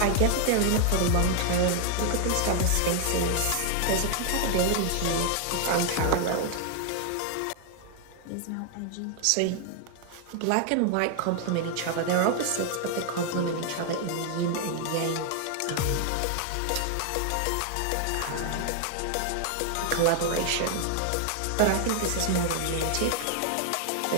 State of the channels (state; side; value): different; both; correlation 0.00